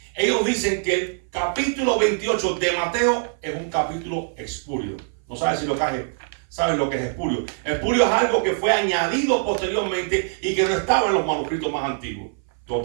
ellos dicen que el capítulo 28 de Mateo es un capítulo espurio. No sabes si lo que sabes lo que es espurio. Espurio es algo que fue añadido posteriormente y que no estaba en los manuscritos más antiguos.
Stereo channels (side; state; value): left; silent; 60 dB below the other